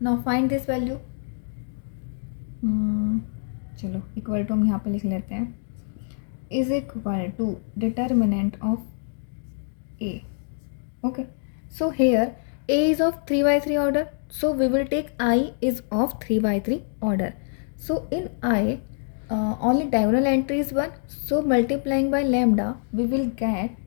find this value. चलो equal to हम यहाँ पे लिख लेते हैं, is equal to determinant of a, okay. So here a is of 3 by 3 order, so we will take I is of 3 by 3 order. So in I only diagonal entry is 1, so multiplying by lambda we will get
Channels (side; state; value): right; silent; digital silence